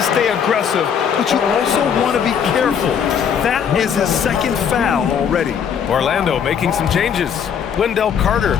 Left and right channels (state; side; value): quieter; right; 7.7 dB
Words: stay aggressive, but you also want to be careful. That is his 2nd foul already. Orlando making some changes. Wendell Carter